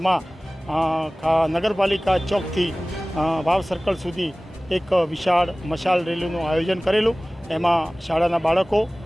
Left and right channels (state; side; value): normal; both; correlation 0.98